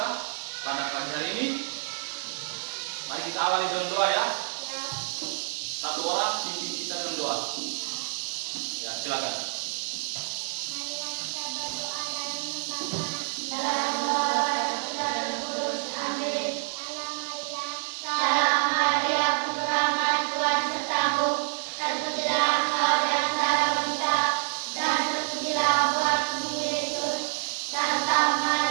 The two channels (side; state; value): left; silent; 60 dB below the other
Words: pada pagi hari ini, mari kita awali dengan doa ya. Ya. Satu orang pimpin kita dengan doa. Ya, silakan. Marilah kita berdoa dalam nama Bapa dan Kudus. Amin. Salam Maria, penuh rahmat, Tuhan sertamu. Terpujilah engkau di antara wanita, dan terpujilah buah tubuh Yesus. Santa